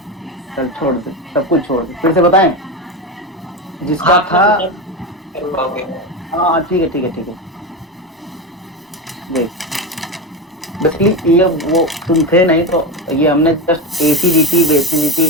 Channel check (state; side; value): normal; both; correlation 0.19